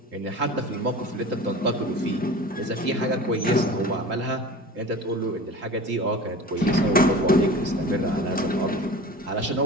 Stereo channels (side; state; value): both; normal; correlation 0.37